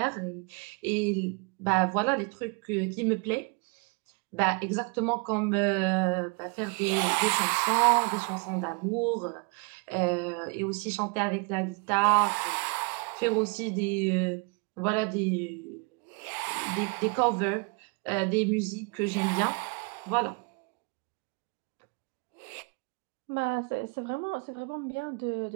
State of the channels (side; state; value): left; quieter; 32.9 dB